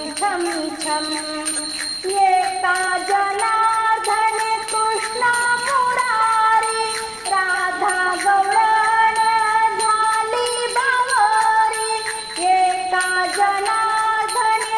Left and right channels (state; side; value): noise; left; rumble, 29 dB below the sound